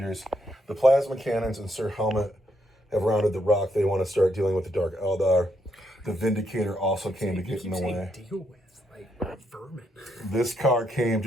The Plasma Cannons and Sir Helmut have rounded the rock. They want to start dealing with the Dark Eldar. The Vindicator also came to get in the way. Deal with, like, vermin. This car came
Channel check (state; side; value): normal; both; correlation 0.76